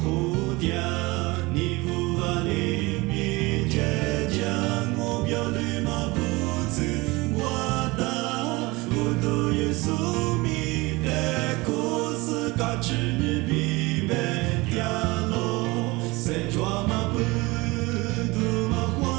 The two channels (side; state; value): left; quieter; 23.1 dB